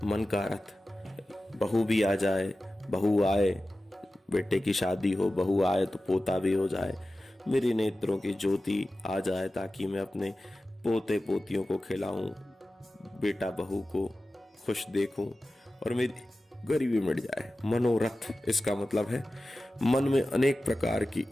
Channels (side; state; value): both; normal; correlation 0.95